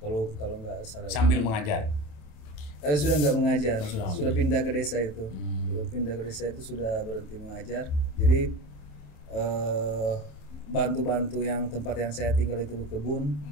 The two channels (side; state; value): right; late; 27 ms